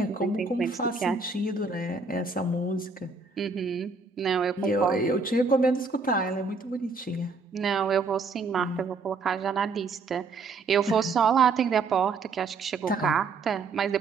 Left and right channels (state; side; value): quieter; left; 4.3 dB